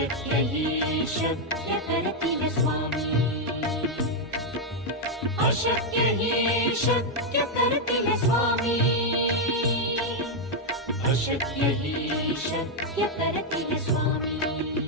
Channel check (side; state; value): both; normal; correlation 0.00